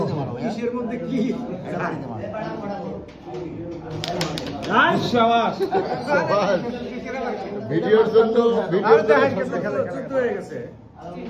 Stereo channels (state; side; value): identical; both; correlation 1.00